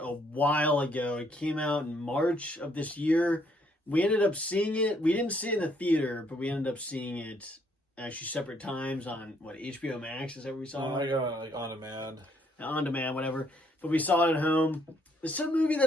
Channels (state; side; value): normal; both; correlation 0.69